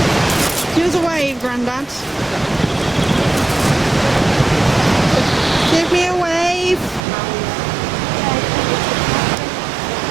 Give us a wave, Grandad. Give me a wave.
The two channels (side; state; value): left; drops out; at 7.0 s